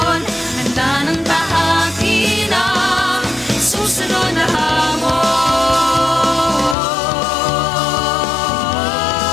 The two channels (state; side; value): drops out; right; at 6.8 s